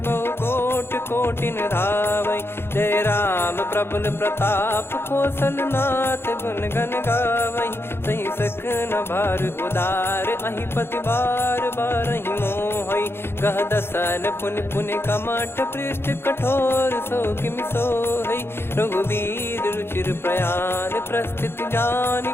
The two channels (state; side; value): late; right; 0.11 ms